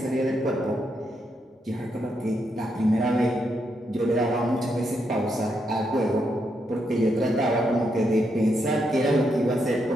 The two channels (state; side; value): normal; both; correlation 0.80